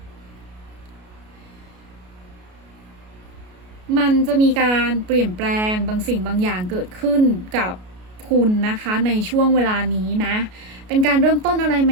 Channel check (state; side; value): late; left; 33 ms